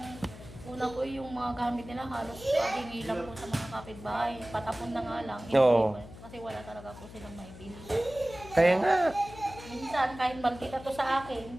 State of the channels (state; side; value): noise; left; hum, 16 dB below the sound